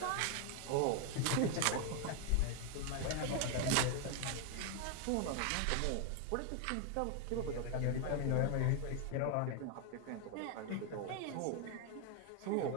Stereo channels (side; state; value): both; different; correlation 0.01